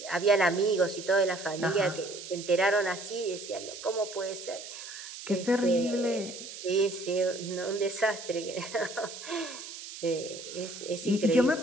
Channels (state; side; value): noise; right; hiss, 11 dB below the sound